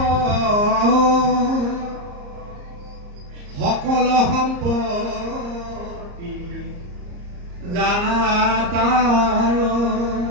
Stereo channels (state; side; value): late; left; 34 ms